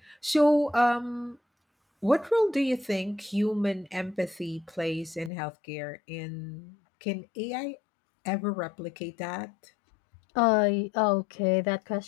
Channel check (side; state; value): right; drops out; at 5.3 s